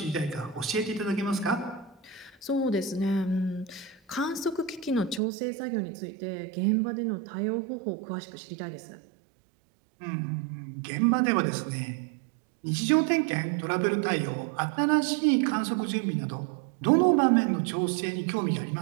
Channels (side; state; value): left; drops out; at 5.2 s